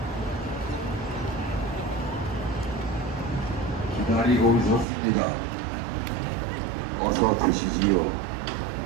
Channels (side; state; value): left; drops out; at 4.9 s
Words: 기다리고 있었습니다. 어서 드시지요.